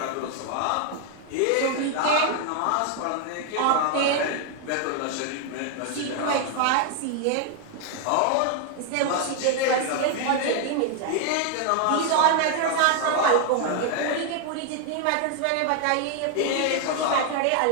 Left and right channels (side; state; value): both; different; correlation 0.00